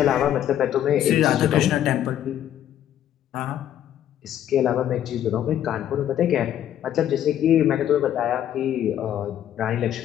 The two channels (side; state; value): right; quieter; 11.0 dB